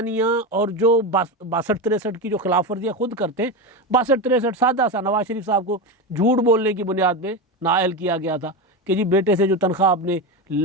और जो 62-63 की जो खिलाफ वर्जियाँ खुद करते हैं, 62-63 सादा सा नवाज शरीफ साहब को झूठ बोलने की बुनियाद पे नाअहल किया गया था कि जी बेटे से जो तनख्वाह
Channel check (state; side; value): normal; both; correlation 0.18